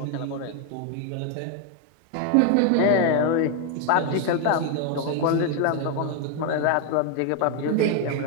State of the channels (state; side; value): different; both; correlation 0.01